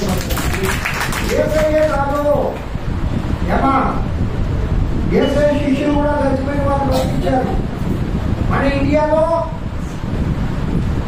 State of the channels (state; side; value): identical; both; correlation 1.00